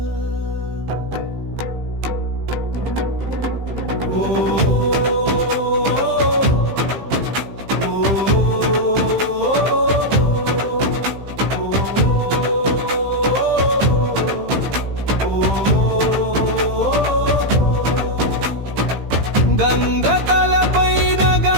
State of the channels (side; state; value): left; late; 15 ms